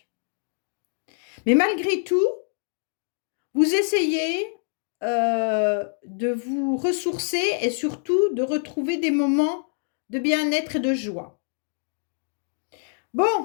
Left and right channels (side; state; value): right; silent; digital silence